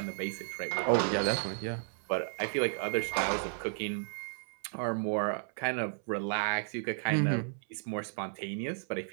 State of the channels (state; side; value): silent; left; 56 dB below the other